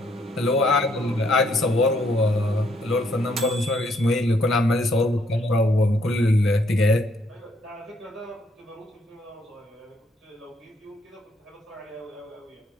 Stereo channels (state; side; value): normal; both; correlation 0.70